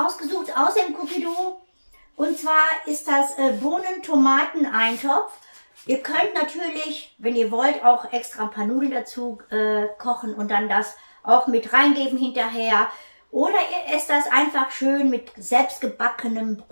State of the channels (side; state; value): both; inverted; correlation -1.00